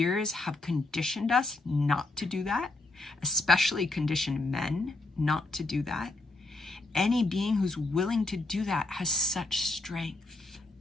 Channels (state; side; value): quieter; right; 3.0 dB